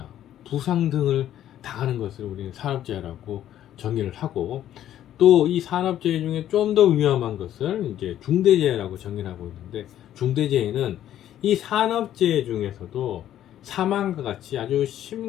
부상 등을 당하는 것을 우리는 산업재해라고 정의를 하고, 또 이 산업재해 중에 좀 더 위험한 것을 이제 중대재해라고 정의를 하고 있는데, 중대재해는 이 산업재해 중에서도 사망과 같이 아주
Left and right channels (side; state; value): right; quieter; 11.7 dB